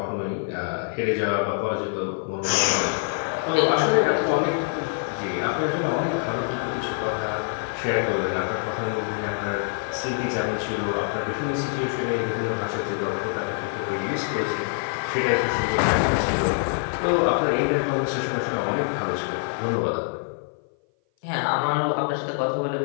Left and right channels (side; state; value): right; silent; 57 dB below the other